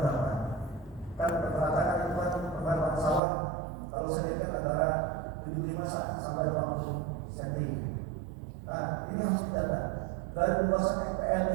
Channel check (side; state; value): left; drops out; at 3.2 s